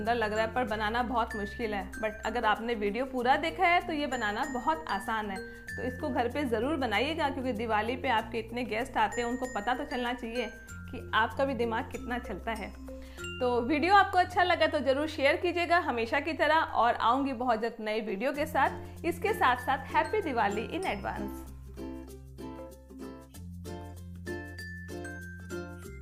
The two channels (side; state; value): both; identical; correlation 1.00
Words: लग रहा है, पर बनाना बहुत मुश्किल है। बट अगर आपने वीडियो पूरा देखा है तो ये बनाना बहुत आसान है। तो इसको घर पे ज़रूर बनाइएगा, क्योंकि दिवाली पे आपके इतने गेस्ट आते हैं, उनको पता तो चलना चाहिए कि आपका भी दिमाग कितना चलता है। तो वीडियो आपको अच्छा लगा तो ज़रूर शेयर कीजिएगा हमेशा की तरह, और आऊँगी बहुत जल्द नए वीडियो के साथ। इसके साथ साथ हैप्पी दिवाली इन एडवांस।